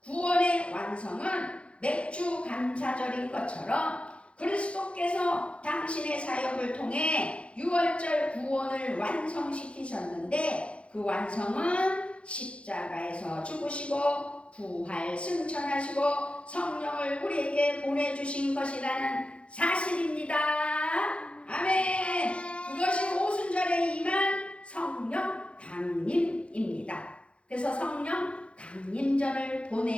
구원의 완성은 맥주 감사절인 것처럼 그리스도께서 당신의 사역을 통해 유월절 구원을 완성시키셨는데 그 완성은 십자가에서 죽으시고 부활 승천하시고 성령을 우리에게 보내주신 것이라는 사실입니다. 아멘. 그것이 오순절에 임한 성령 강림입니다. 그래서 성령 강림절을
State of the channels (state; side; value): late; right; 0.060 ms